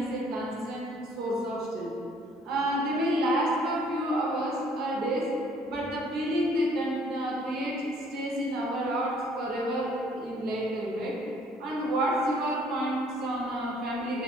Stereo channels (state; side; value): normal; both; correlation 0.60